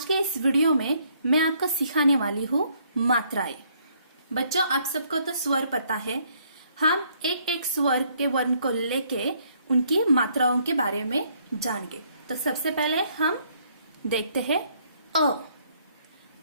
के इस वीडियो में मैं आपको सिखाने वाली हूँ मात्राएं। बच्चों, आप सबको तो स्वर पता है। हम एक एक स्वर के वर्ण को लेके उनकी मात्राओं के बारे में जानेंगे। तो सबसे पहले हम देखते हैं अ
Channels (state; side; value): inverted; both; correlation -0.67